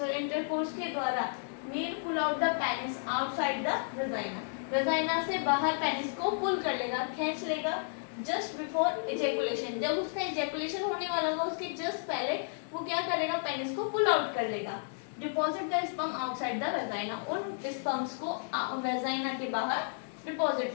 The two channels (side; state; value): right; silent; 56 dB below the other